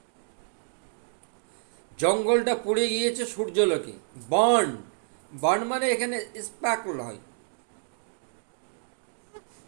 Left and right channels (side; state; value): left; silent; digital silence